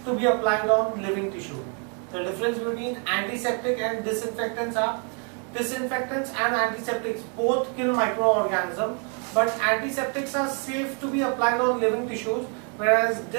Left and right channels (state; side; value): quieter; left; 38.8 dB